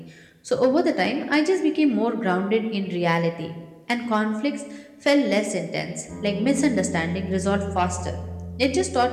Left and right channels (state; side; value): identical; both; correlation 1.00